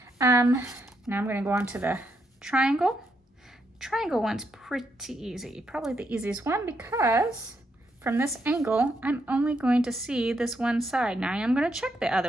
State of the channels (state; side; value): normal; both; correlation 0.79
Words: Now I'm gonna go on to the triangle. Triangle one's pretty easy, probably the easiest one because from this angle, I'm only going to see this one side. Now I am gonna check the